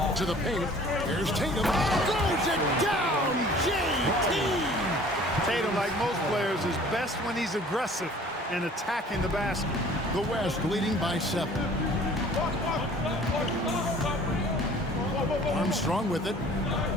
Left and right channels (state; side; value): normal; both; correlation 0.50